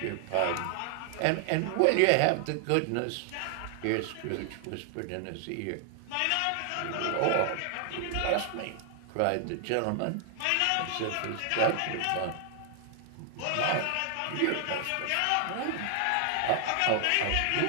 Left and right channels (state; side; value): different; both; correlation 0.00